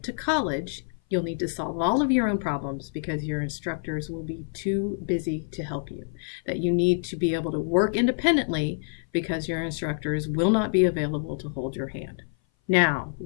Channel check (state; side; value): silent; right; 58 dB below the other